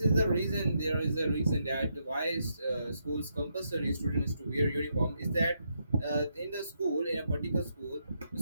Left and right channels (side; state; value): both; inverted; correlation -0.80